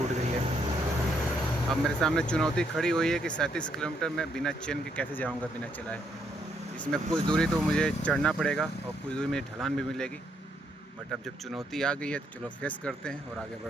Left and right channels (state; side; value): normal; both; correlation 0.74